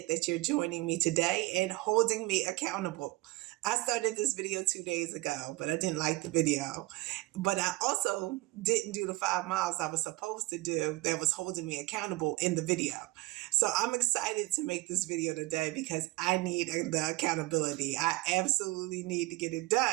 that you're joining me today and holding me accountable. I started this video 2 days ago, but I didn't like the video. But I also didn't do the 5 miles I was supposed to do that was holding me accountable in the video. So I'm excited to make this video today because I need the accountability. I absolutely need to get it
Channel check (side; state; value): left; quieter; 21.1 dB